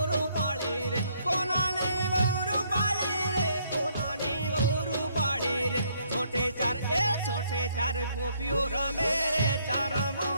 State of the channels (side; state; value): both; inverted; correlation -0.68